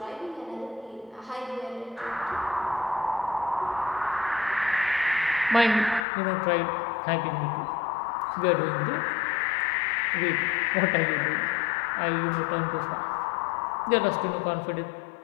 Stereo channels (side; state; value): right; drops out; at 6.1 s